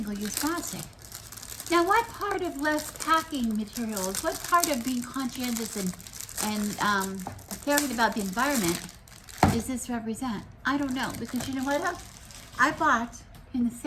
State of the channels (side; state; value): both; identical; correlation 1.00